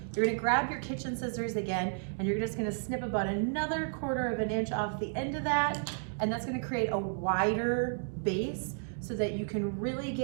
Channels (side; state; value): left; silent; digital silence